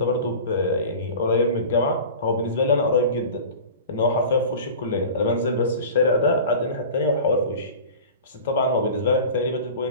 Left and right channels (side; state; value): both; inverted; correlation -0.37